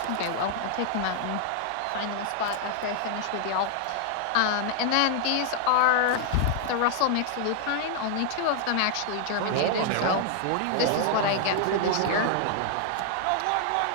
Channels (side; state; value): both; different; correlation -0.01